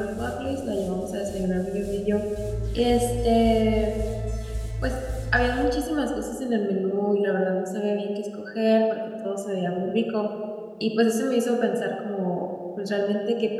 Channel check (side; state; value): both; identical; correlation 1.00